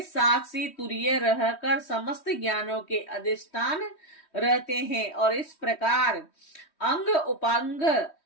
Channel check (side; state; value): right; late; 3.1 ms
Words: साक्षी तुरीय रहकर समस्त ज्ञानों के अधिष्ठान रहते हैं। और इस प्रकार अंग, उपांग